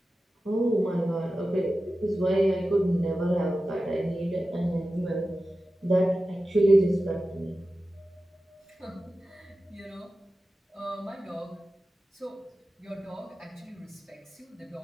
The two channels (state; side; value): normal; both; correlation 0.94